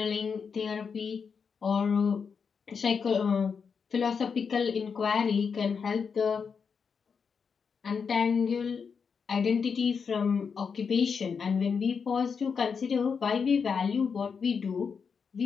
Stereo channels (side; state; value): right; quieter; 6.0 dB